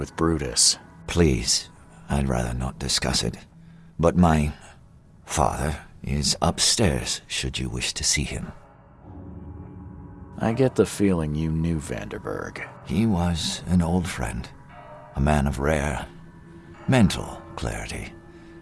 Brutus? Please, I'd rather not discuss it. But my father is upstairs, should you wish to see him. I get the feeling you knew Vanderberg. He was an old friend, a man of rare mental clarity.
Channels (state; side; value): identical; both; correlation 1.00